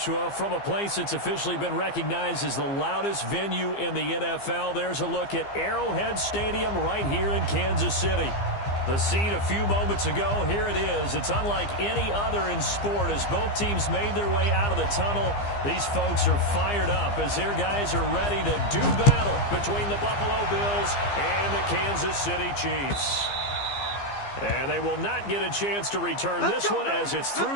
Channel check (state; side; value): late; right; 15 ms